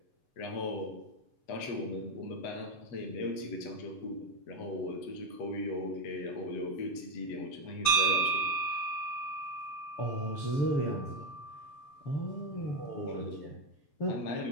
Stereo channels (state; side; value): late; right; 6.8 ms